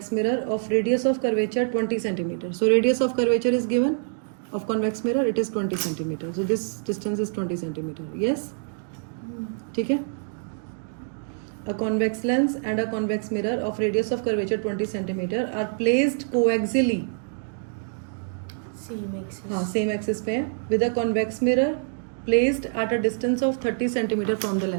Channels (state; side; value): silent; left; digital silence